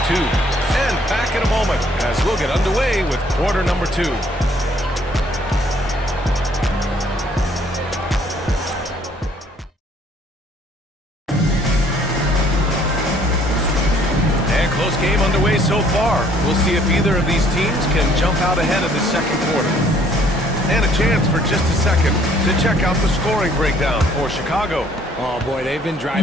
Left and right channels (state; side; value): normal; both; correlation 0.61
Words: 2. And back in a moment as we'll get underway with quarter number 2. Game underway so far. We'll see if either of these teams can jump out ahead of the second quarter. And a chance for just a second to check out the scoring breakdown for Chicago. Oh boy, they've been